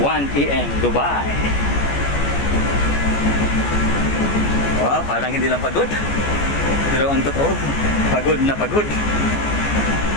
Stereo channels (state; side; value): late; right; 14 ms